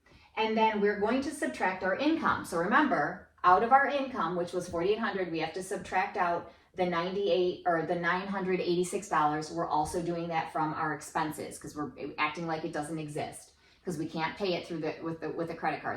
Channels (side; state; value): both; identical; correlation 1.00